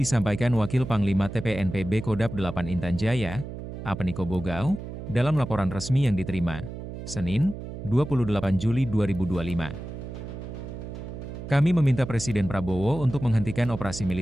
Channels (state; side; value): noise; right; hum, 9 dB below the sound